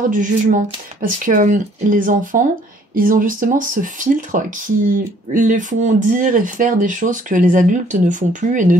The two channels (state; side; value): normal; both; correlation 0.60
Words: du jugement. Parce que les enfants, ils ont justement ce filtre qui les font dire et faire des choses que les adultes ne font plus et ne